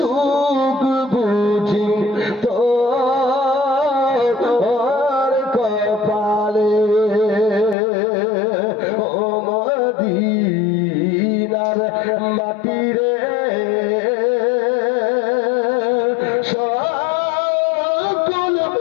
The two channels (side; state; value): right; drops out; at 7.8 s